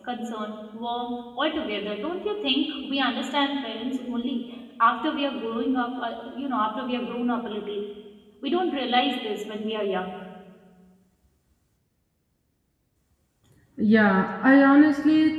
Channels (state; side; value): identical; both; correlation 1.00